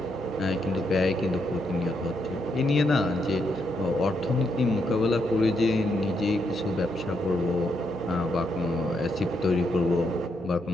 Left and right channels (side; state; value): both; normal; correlation 0.79